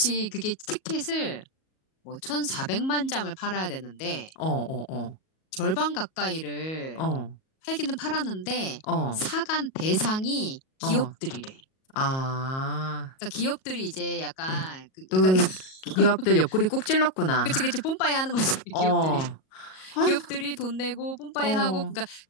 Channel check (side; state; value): right; late; 38 ms